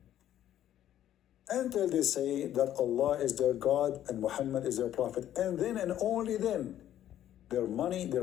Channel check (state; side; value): quieter; right; 11.6 dB